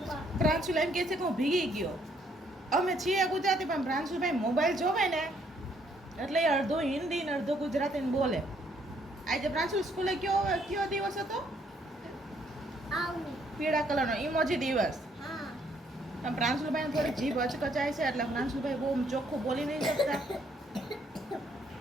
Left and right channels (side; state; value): both; normal; correlation 0.68